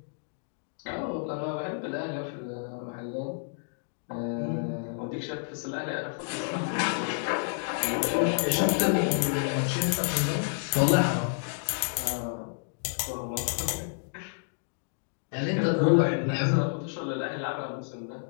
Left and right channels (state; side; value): silent; right; digital silence